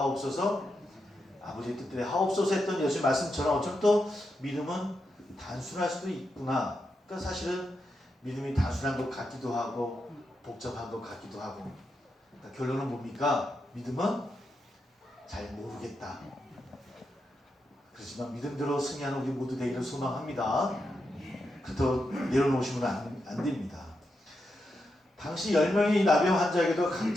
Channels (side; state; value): both; normal; correlation 0.85